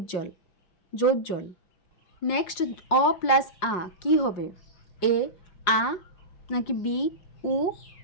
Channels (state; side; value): late; right; 5.5 ms